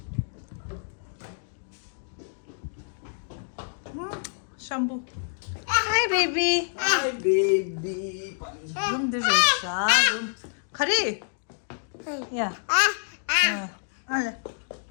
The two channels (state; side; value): silent; right; digital silence